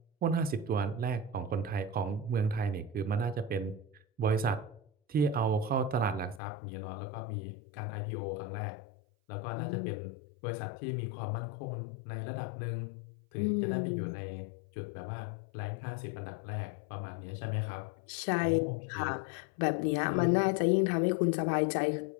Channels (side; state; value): right; drops out; at 6.4 s